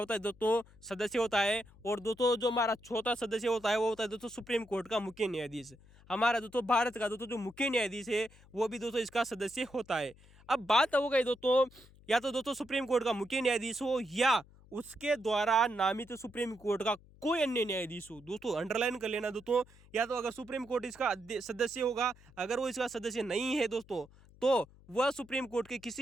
है दोस्तों, सदस्य होता है। और दोस्तों जो हमारा चौथा सदस्य होता है वो होता है दोस्तों सुप्रीम कोर्ट का मुख्य न्यायाधीश। हमारा दोस्तों भारत का दोस्तों जो मुख्य न्यायाधीश है वो भी दोस्तों इसका सदस्य होता है। अब बात हो गई दोस्तों, या तो दोस्तों सुप्रीम कोर्ट का मुख्य न्यायाधीश हो या उसके द्वारा नामित सुप्रीम कोर्ट का कोई अन्य न्यायाधीश हो। दोस्तों अंडरलाइन कर लेना दोस्तों, या तो अगर सुप्रीम कोर्ट इसका सदस्य होगा, अगर वो इसका सदस्य नहीं है दोस्तों, तो वह सुप्रीम कोर्ट के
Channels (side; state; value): left; noise; hum, 25 dB below the sound